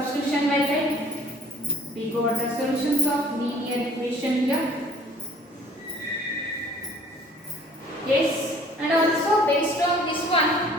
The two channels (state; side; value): normal; both; correlation 0.53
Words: method. We got the solutions of linear equation here. Yes, and also based on this